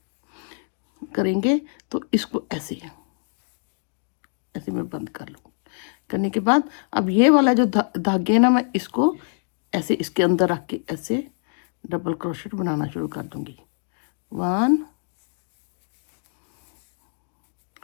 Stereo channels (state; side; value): silent; right; 56 dB below the other